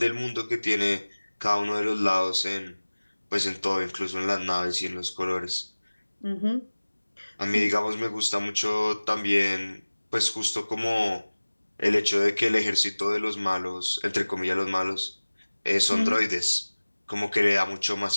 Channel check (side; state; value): both; inverted; correlation -1.00